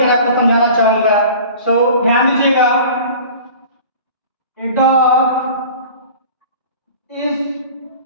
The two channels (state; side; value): inverted; both; correlation -0.42